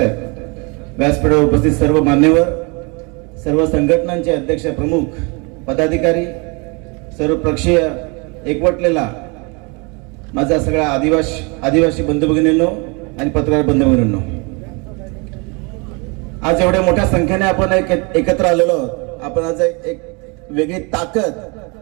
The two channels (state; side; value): quieter; left; 30.3 dB